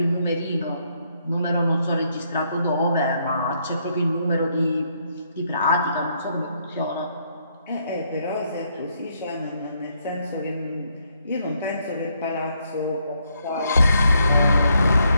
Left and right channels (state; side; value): inverted; both; correlation -0.74